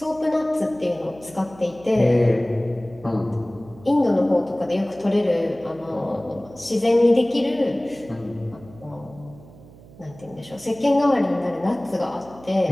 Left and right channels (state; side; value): noise; right; hum, 21 dB below the sound